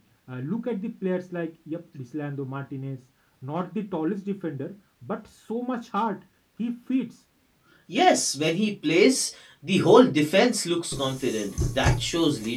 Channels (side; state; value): both; identical; correlation 1.00